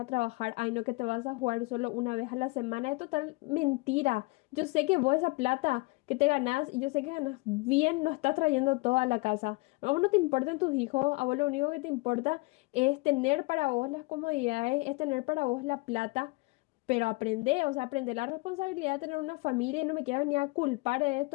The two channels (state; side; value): quieter; right; 25.6 dB